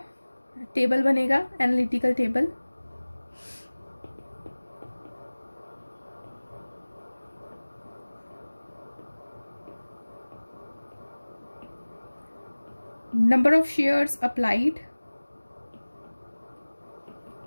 टेबल बनेगा, analytical table. Number of shares applied,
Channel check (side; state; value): both; inverted; correlation -1.00